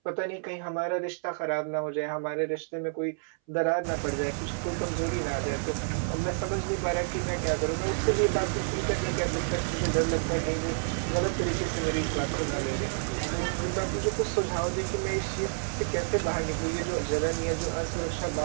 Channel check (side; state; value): left; silent; 58 dB below the other